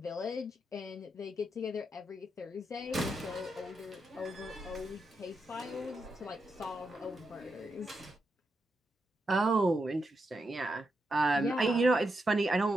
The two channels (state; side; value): normal; both; correlation 0.84